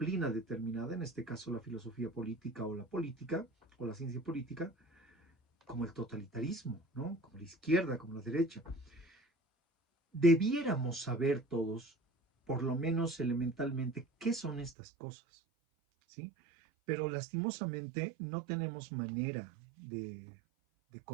determinada, en este caso la filosofía política o la ciencia política, como el totalitarismo, ¿no? Como la izquierda, como la derecha. Debiéramos saber todos, por lo menos elementalmente, qué son estas cosas, ¿sí? Pero lastimosamente no tenemos manera de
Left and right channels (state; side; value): drops out; left; at 14.8 s